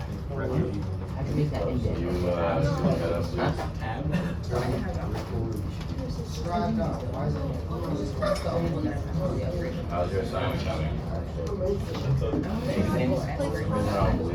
How'd you make that indent? You, Huh? how's your assignment coming?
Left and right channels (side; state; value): both; identical; correlation 1.00